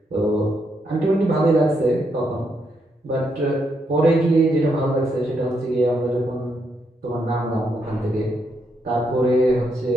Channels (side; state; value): both; normal; correlation 0.78